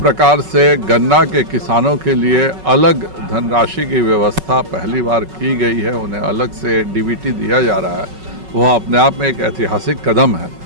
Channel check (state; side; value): late; left; 5.3 ms